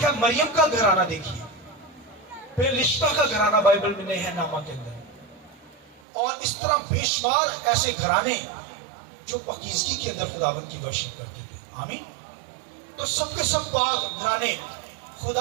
مریم کا گھرانہ دیکھیے، پھر رشتہ کا گھرانہ بائبل میں نہیں ہے نامہ کے اندر، اور اس طرح بے شمار ایسے گھرانے جو پاکیزگی کے اندر خداوند کی ورشپ کرتے تھے، آمین۔ تو سب کے سب پاک گھرانے،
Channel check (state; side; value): drops out; left; at 6.0 s